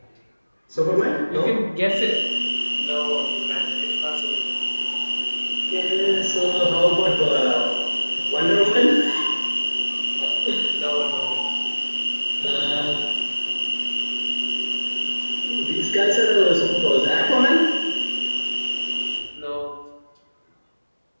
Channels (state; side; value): inverted; both; correlation -1.00